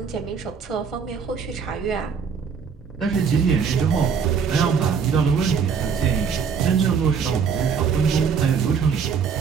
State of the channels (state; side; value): quieter; left; 6.3 dB